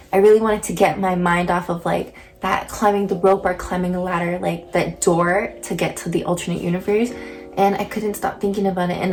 I really wanted to get my mind off of like that climbing the rope or climbing a ladder, like that door to get to the alternate universe, and I couldn't stop thinking about it. And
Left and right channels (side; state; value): both; identical; correlation 1.00